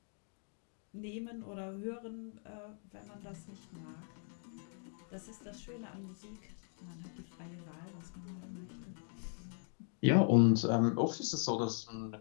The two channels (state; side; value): silent; right; 52 dB below the other